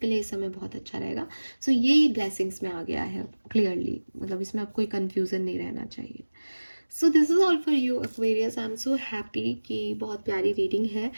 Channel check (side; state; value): both; inverted; correlation -1.00